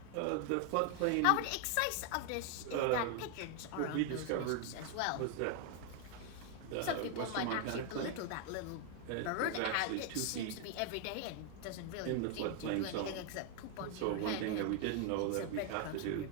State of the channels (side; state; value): both; different; correlation 0.00